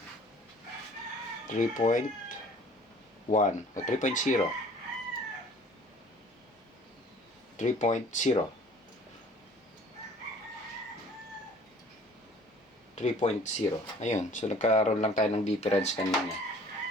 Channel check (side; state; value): both; normal; correlation 0.51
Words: 3.1 o 3.0. 3.0. 3.0. Ayun. So, nagkaroon lang tayo ng difference kanina.